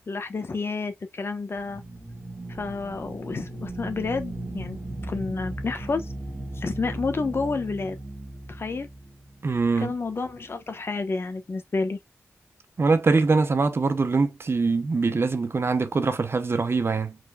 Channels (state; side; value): normal; both; correlation 0.87